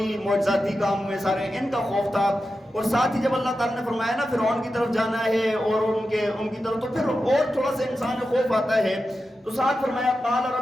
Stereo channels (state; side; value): normal; both; correlation 0.91